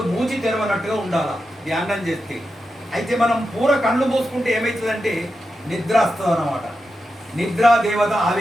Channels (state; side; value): normal; both; correlation 0.89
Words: మూచి తెరవనట్టుగా ఉండాలా ధ్యానం చేస్తే. అయితే మనం పూర కళ్ళు మూసుకుంటే ఏమవుతుందంటే నిద్ర వస్తుంది అన్నమాట. నిద్రా దేవత